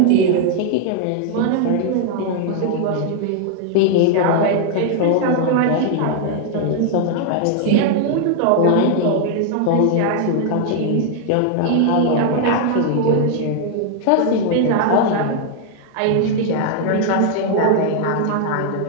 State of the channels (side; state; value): both; different; correlation 0.00